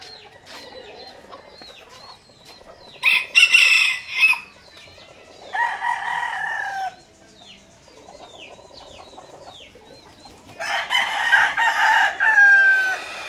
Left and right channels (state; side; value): identical; both; correlation 1.00